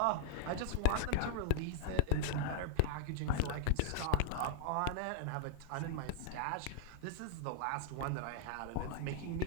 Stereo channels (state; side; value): different; both; correlation -0.01